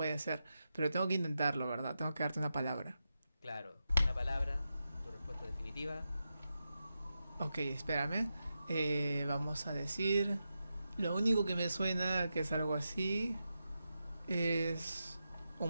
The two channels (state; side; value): inverted; both; correlation -0.89